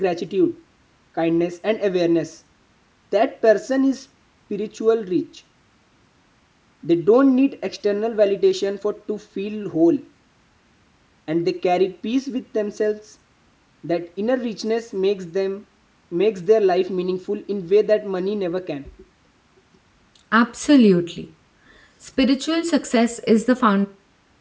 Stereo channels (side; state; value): both; identical; correlation 1.00